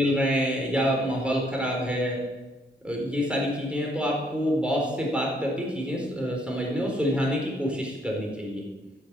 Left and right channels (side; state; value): both; normal; correlation 0.68